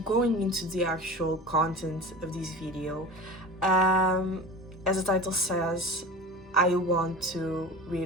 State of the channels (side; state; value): both; normal; correlation 0.34